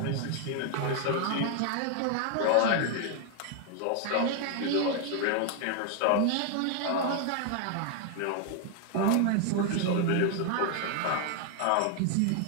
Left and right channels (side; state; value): both; different; correlation 0.00